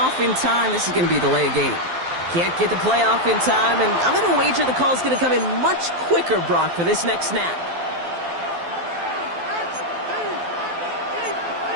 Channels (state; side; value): late; left; 12 ms